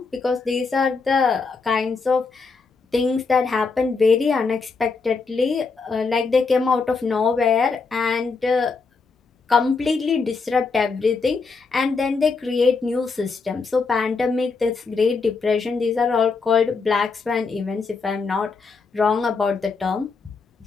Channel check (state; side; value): quieter; right; 4.6 dB